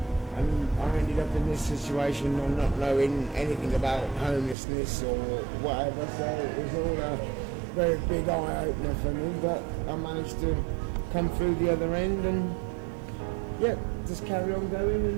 And I ended up in this situation and not knowing anything about homelessness or whatever, so it was all a very big eye-opener for me, but I managed to come through the other end and, yeah, just carry on going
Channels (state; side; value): drops out; left; at 4.5 s